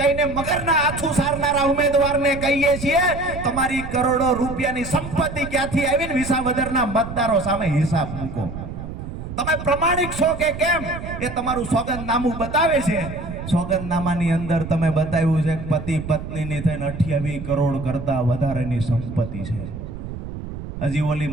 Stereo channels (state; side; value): noise; right; rumble, 9 dB below the sound